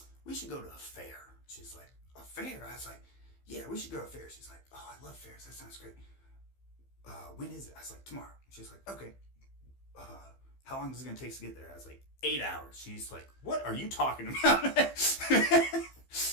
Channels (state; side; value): late; right; 15 ms